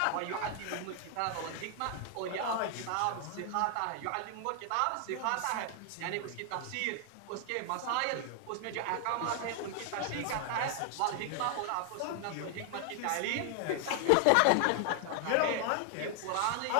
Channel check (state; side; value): different; both; correlation 0.00